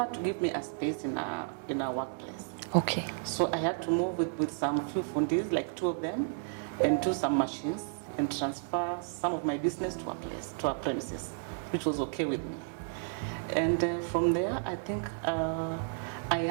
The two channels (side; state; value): left; silent; digital silence